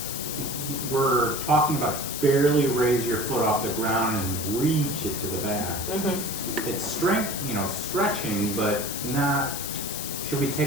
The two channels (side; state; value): left; noise; hiss, 5 dB below the sound